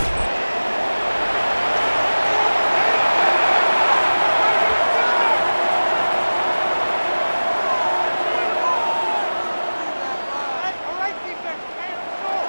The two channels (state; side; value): inverted; both; correlation -1.00